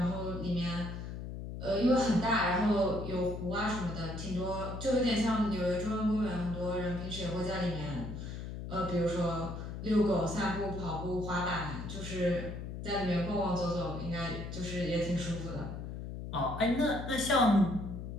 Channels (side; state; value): left; noise; hum, 7 dB below the sound